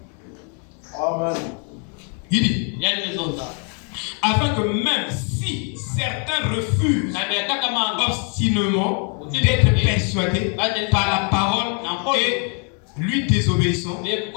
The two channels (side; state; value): right; quieter; 39.5 dB